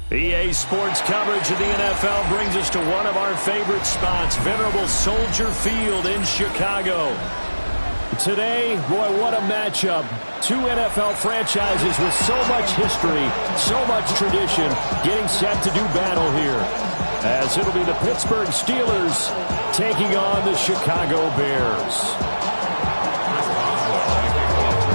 EA Sports coverage of the NFL brings us to one of our favorite spots, venerable Soldier Field in Chicago. Today, boy, what a matchup. Two NFL franchises with so much history, so much tradition, getting set to do battle here. As it'll be the Pittsburgh Steelers taking on the Chicago Bears.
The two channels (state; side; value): inverted; both; correlation -1.00